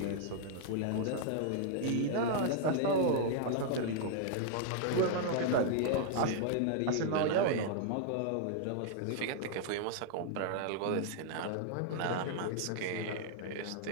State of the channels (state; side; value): different; both; correlation -0.01